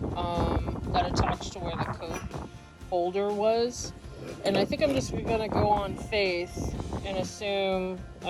that attach to where the coat holder was. And I think I'm just gonna go on faith and assume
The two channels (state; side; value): identical; both; correlation 1.00